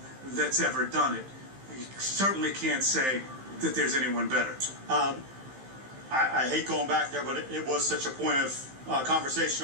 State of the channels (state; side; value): late; left; 15 ms